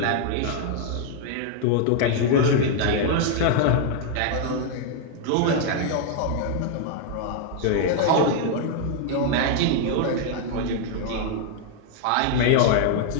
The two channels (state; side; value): different; both; correlation 0.00